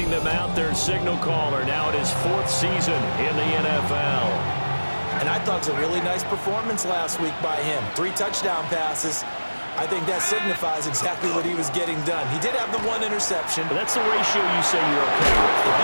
them out, their signal caller now in his 4th season in the NFL. And I thought it was a really nice performance last week by him. 3 touchdown passes. I think that signifies exactly what he was getting done. He did have the 1 interception. But that's the ratio you say you're okay with. If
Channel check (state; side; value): inverted; both; correlation -1.00